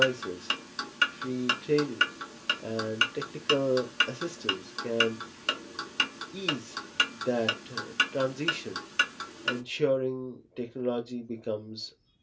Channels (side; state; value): both; identical; correlation 1.00